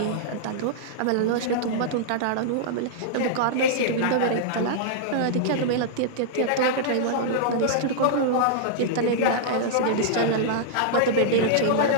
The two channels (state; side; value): different; both; correlation -0.02